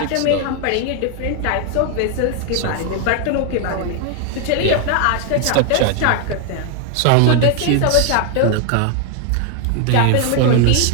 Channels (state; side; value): different; both; correlation 0.00